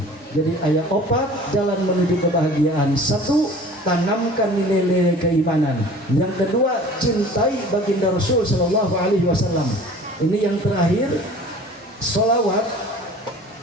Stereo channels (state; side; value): normal; both; correlation 0.45